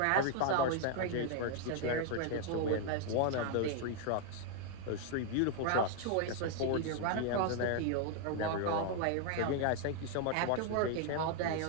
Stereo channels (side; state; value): both; different; correlation 0.00